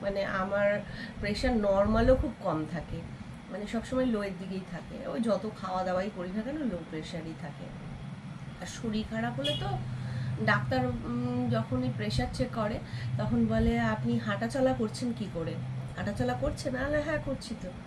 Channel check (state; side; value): identical; both; correlation 1.00